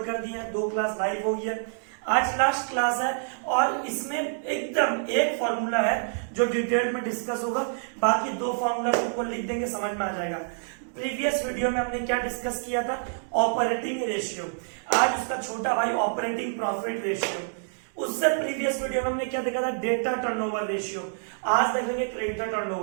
कर दिए हैं, 2 क्लास लाइव हो गई है, आज लास्ट क्लास है और इसमें एकदम एक फॉर्मूला है जो डिटेल में डिस्कस होगा, बाकी 2 फॉर्मूला को लिख देंगे, समझ में आ जाएगा। प्रीवियस वीडियो में हमने क्या डिस्कस किया था, ऑपरेटिंग रेशियो, आज उसका छोटा भाई ऑपरेटिंग प्रॉफिट रेशियो। उससे प्रीवियस वीडियो में हमने क्या देखा था, डेटा टर्नओवर रेशियो, आज देखेंगे क्रेडिटर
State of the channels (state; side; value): silent; left; digital silence